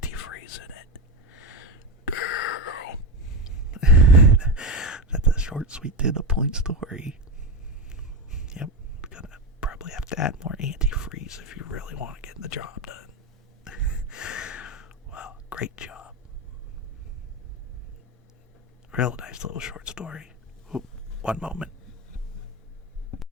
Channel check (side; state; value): both; normal; correlation 0.15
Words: in it. That's a short, sweet, to the point story. Yep, gonna probably have to add more antifreeze if you really want to get the job done. Well, great job. Real nice little short story. Ooh, one moment.